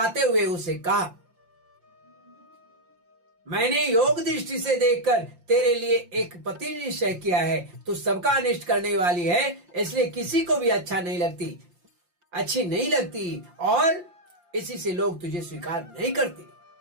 हुए उसे कहा, मैंने योग दृष्टि से देखकर तेरे लिए एक पति निश्चय किया है। तू सबका अनिष्ट करने वाली है, इसलिए किसी को भी अच्छी नहीं लगती और इसी से लोग तुझे स्वीकार नहीं करते।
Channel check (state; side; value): late; left; 5.7 ms